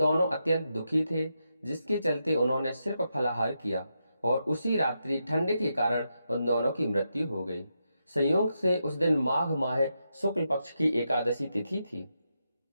अत्यंत दुखी थे, जिसके चलते उन्होंने सिर्फ फलाहार किया और उसी रात्रि ठंड के कारण उन दोनों की मृत्यु हो गई। संयोग से उस दिन माघ माह शुक्ल पक्ष की एकादशी तिथि थी।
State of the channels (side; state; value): both; inverted; correlation -0.85